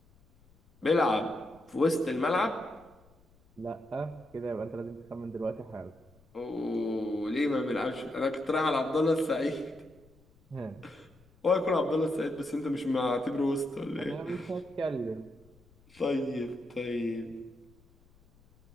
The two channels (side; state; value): left; noise; rumble, 29 dB below the sound